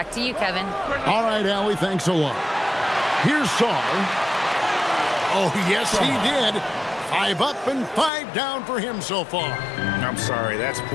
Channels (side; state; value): right; drops out; at 8.1 s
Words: to you, Kevin. All right, Allie, thanks a lot. Here's Saul. Oh, yes, he did. 5 up and 5 down for him so far. I'm sorry, that's